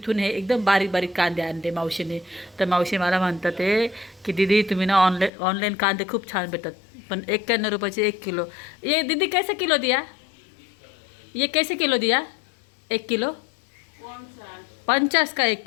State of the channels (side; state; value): right; drops out; at 5.3 s